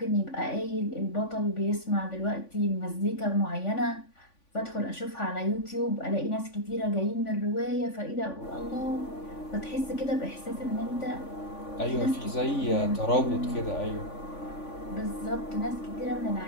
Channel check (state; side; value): late; right; 3.5 ms